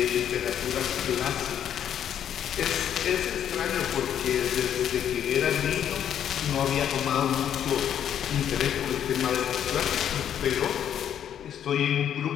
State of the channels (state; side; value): quieter; right; 9.6 dB